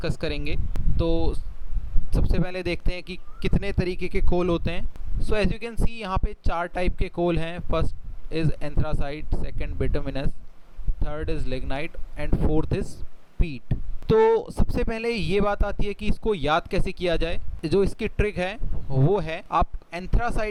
करेंगे। तो सबसे पहले देखते हैं कि कितने तरीके के कोल होते हैं। So as you can see यहाँ पे 4 टाइप के कोल हैं। First is anthracite, second bituminous, third is lignite and fourth is peat। तो सबसे पहले ये बात आती है कि इसको याद कैसे किया जाए। जो इसकी ट्रिक है वो है, आप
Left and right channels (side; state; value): both; identical; correlation 1.00